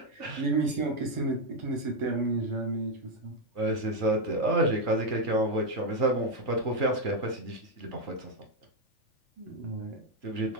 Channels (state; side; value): late; right; 3.4 ms